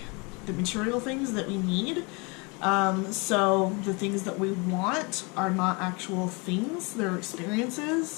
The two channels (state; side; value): quieter; right; 29.8 dB